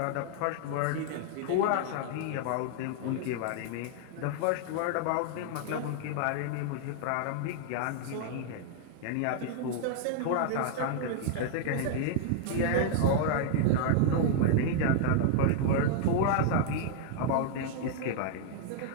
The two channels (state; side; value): different; both; correlation -0.01